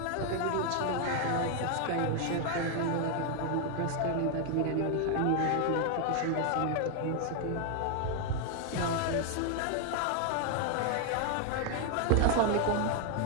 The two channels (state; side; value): different; both; correlation 0.00